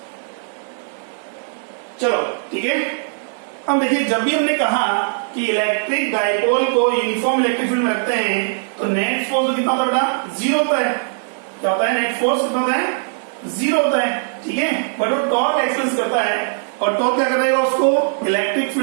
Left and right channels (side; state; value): left; silent; digital silence